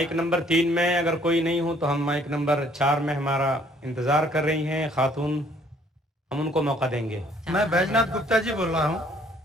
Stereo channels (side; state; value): both; normal; correlation 0.61